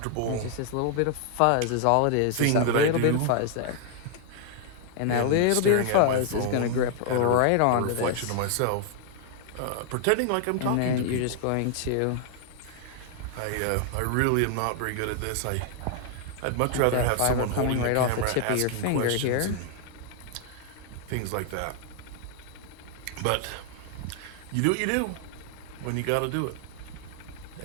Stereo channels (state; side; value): different; both; correlation 0.00